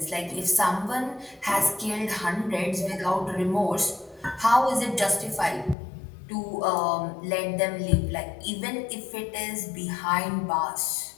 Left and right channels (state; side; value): drops out; right; at 5.8 s